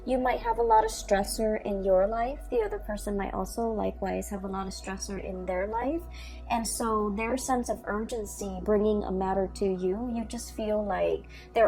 You might have a lot of stressor in your life. The other person might also likewise have a lot of stressor in their life. And so their sense of urgency bringing a matter to you, you just feel like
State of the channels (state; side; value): identical; both; correlation 1.00